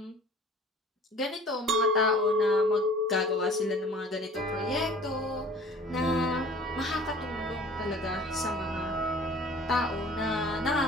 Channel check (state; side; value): normal; both; correlation 0.47